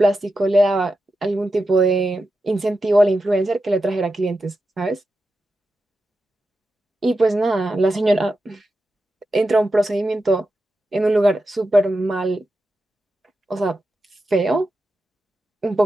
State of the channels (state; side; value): normal; both; correlation 0.89